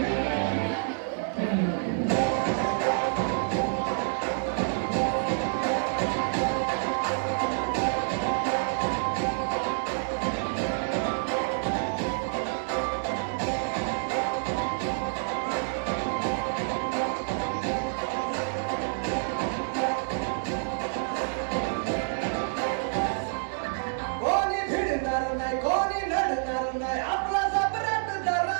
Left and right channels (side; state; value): left; silent; digital silence